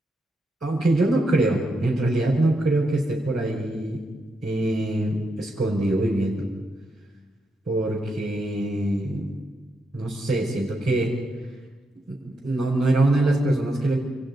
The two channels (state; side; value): normal; both; correlation 0.83